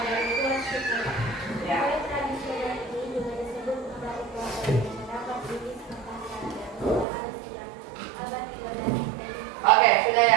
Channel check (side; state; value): left; drops out; at 7.1 s